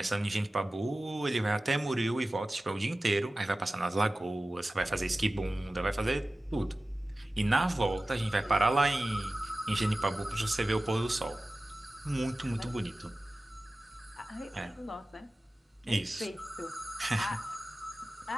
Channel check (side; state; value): both; normal; correlation 0.96